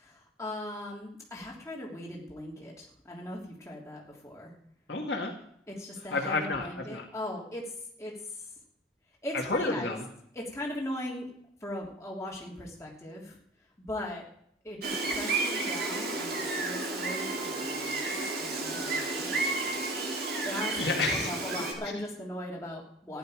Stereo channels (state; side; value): normal; both; correlation 0.37